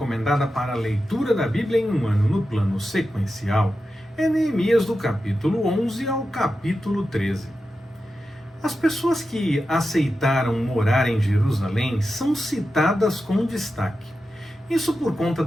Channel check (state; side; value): normal; both; correlation 0.91